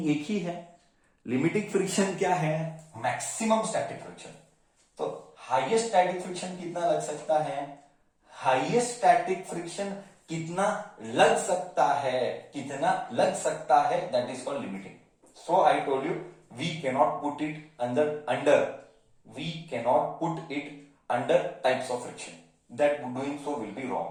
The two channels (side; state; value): both; identical; correlation 1.00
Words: एक ही है। लिमिटिंग फ्रिक्शन क्या है? Maximum static friction. तो हाईएस्ट स्टैटिक फ्रिक्शन कितना लग सकता है? हाईएस्ट स्टैटिक फ्रिक्शन कितना लग सकता है, कितना लग सकता है, that is called limiting. So I told you we cannot put it we cannot put it under types of friction. That doing so will be wrong.